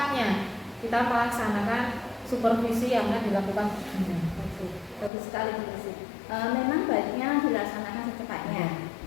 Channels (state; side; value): drops out; right; at 5.1 s